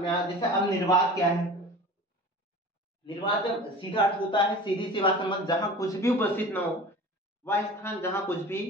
आया। जैसे अब निर्वात क्या है? निर्वात जब सीधा अर्थ होता है सीधी सी बात समझ, जहां कुछ भी उपस्थित ना हो, वह स्थान जहां कुछ भी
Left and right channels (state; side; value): normal; both; correlation 0.38